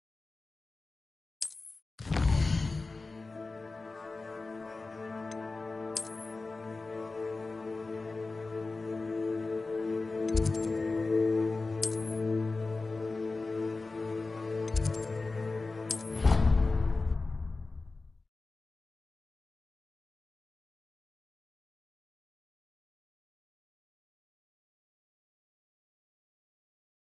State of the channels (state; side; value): quieter; right; 3.6 dB